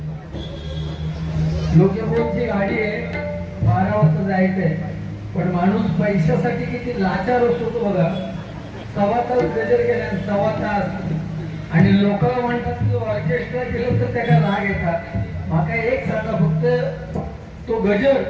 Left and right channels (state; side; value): identical; both; correlation 1.00